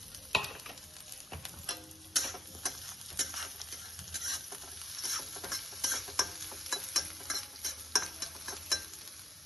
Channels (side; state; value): both; normal; correlation 0.78